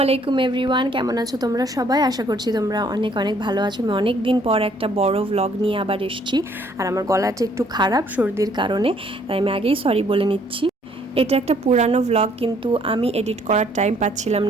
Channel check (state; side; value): normal; both; correlation 0.63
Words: আলাইকুম এভরিওয়ান, কেমন আছো তোমরা সবাই? আশা করছি তোমরা অনেক অনেক ভালো আছো। আমি অনেক দিন পর একটা বড় ভ্লগ নিয়ে আবার এসেছি। আর আমার গলাটা একটু খারাপ সর্দির কারণে, তাই আমি আগেই সরি বলে নিচ্ছি। এটা একটা পুরানো ভ্লগ, কিন্তু আমি এডিট করার টাইম পাচ্ছিলাম